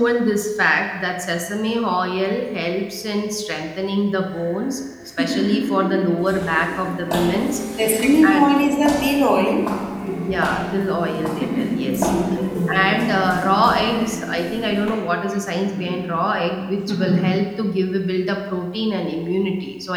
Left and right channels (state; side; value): identical; both; correlation 1.00